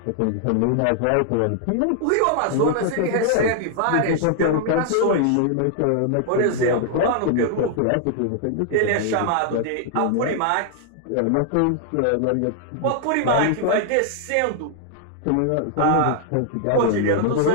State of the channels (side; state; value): both; different; correlation 0.00